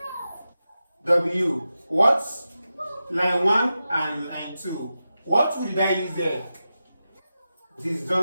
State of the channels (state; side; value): inverted; both; correlation -0.92